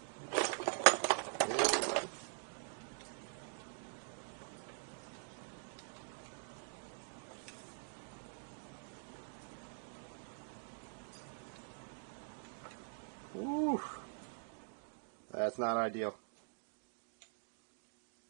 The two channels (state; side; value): silent; left; digital silence